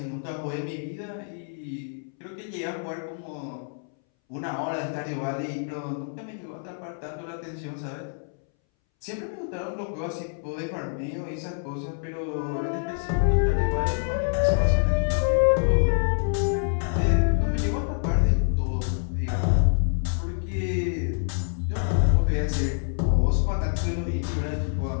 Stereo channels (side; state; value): right; silent; 61 dB below the other